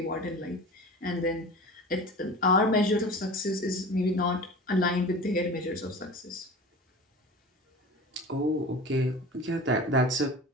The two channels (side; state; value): both; normal; correlation 0.36